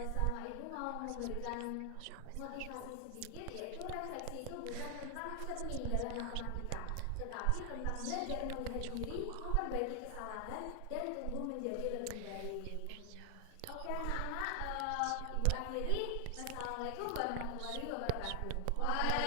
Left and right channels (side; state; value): both; different; correlation 0.00